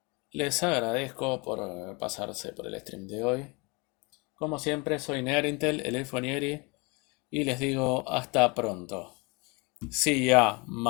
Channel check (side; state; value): right; quieter; 28.7 dB